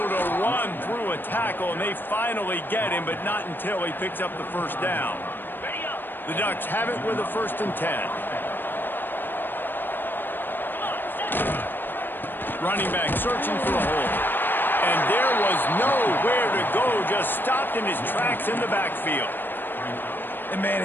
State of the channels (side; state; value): right; late; 0.095 ms